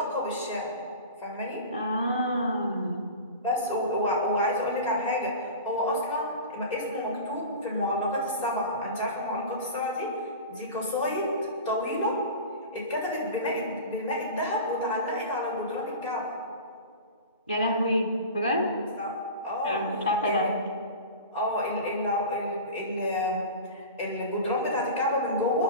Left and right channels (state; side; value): inverted; both; correlation -0.32